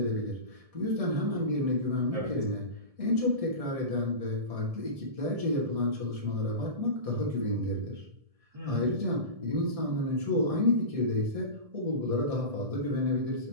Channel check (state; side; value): late; left; 1.7 ms